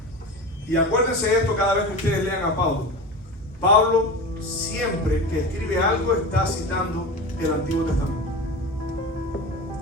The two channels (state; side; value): normal; both; correlation 0.29